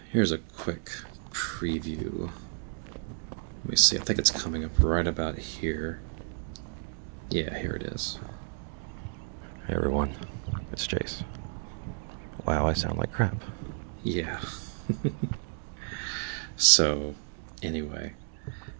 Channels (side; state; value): left; silent; 57 dB below the other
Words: here's a quick preview. Let me see, I think it's coming up right about here. Yeah, here it is. Hey everyone, it's Jace. Wow, I sound like crap. Yeah. So, anyway,